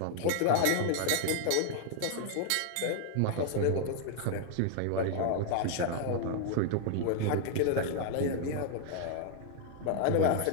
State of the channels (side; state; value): both; different; correlation 0.00